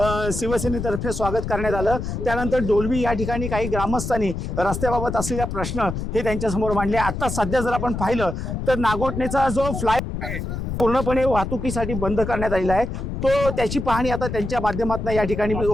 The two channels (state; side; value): noise; left; rumble, 5 dB below the sound